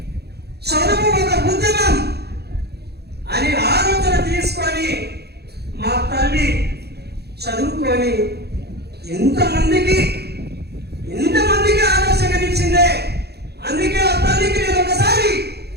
చదువు ఒక ఉద్యమం అని ఆలోచన తీసుకొని మా తల్లి చదువుకొని ఇంతమందికి ఆలోచననిచ్చిందే. అందుకే ఆ తల్లికి నేను ఒకసారి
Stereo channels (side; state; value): left; late; 0.48 ms